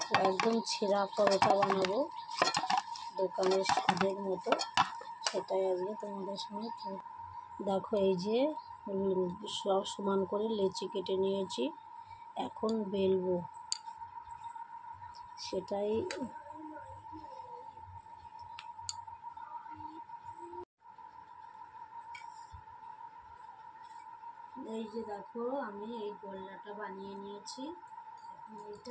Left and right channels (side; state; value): both; identical; correlation 1.00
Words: একদম ছেঁড়া পরোটা বানাবো, দোকানের স্বাদের মতো। সেটাই আজকে তোমাদের সঙ্গে দেখো। এই যে সব সমান করে লেচি কেটে নিয়েছি, এখন বেলবো সেটাই। এই যে দেখো, আমি এই গোল্লাটা বানিয়ে নিয়েছি। এখন